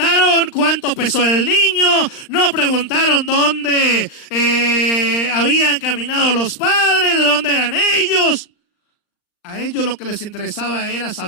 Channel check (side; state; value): right; late; 38 ms